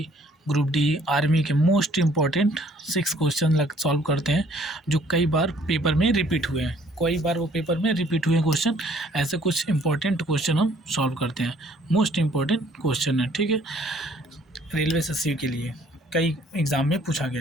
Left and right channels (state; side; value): normal; both; correlation 0.60